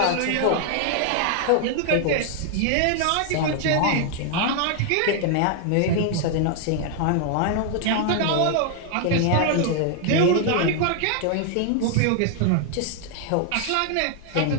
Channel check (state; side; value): different; both; correlation 0.00